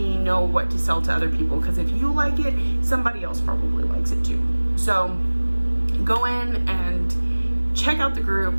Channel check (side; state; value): both; inverted; correlation -1.00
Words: know what to sell to other people, because if you like it, somebody else probably likes it too. So go in and check out the group,